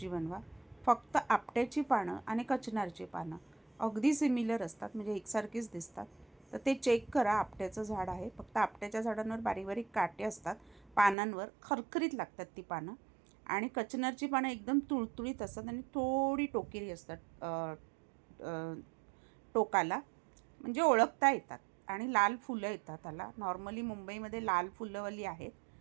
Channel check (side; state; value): left; drops out; at 11.2 s